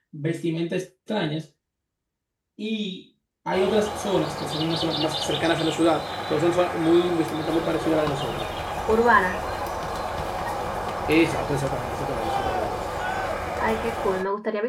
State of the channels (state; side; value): identical; both; correlation 1.00